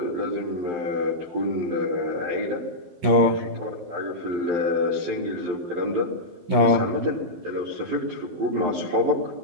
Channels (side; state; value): left; late; 12 ms